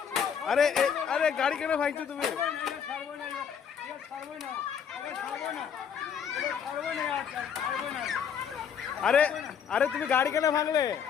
আরে আরে গাড়ি কেন ভাঙছো তুমি? আরে আরে তুমি গাড়ি কেন ভাঙলে?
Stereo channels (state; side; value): quieter; right; 7.5 dB